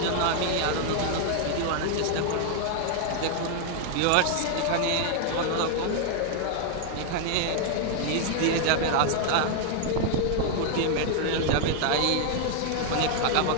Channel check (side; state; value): both; different; correlation 0.00